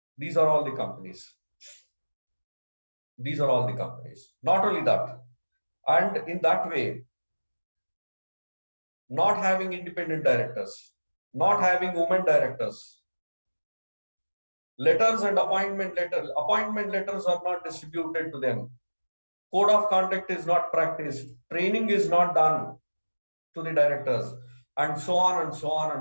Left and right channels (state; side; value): inverted; both; correlation -1.00